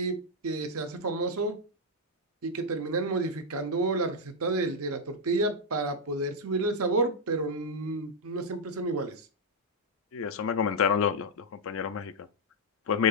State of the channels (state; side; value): normal; both; correlation -0.03